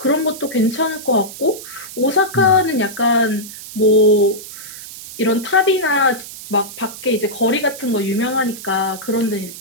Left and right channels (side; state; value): right; noise; hiss, 13 dB below the sound